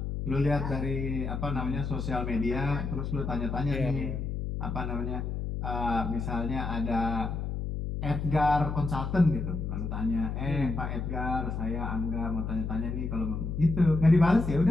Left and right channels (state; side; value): noise; left; hum, 3 dB below the sound